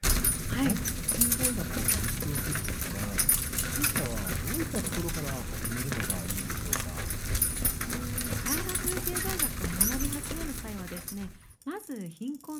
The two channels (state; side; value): identical; both; correlation 1.00